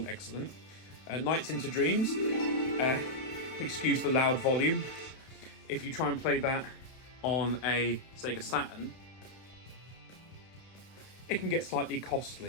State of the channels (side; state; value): right; late; 31 ms